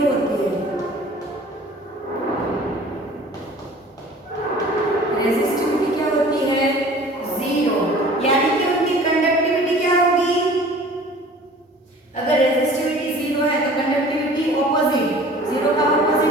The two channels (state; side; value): normal; both; correlation 0.47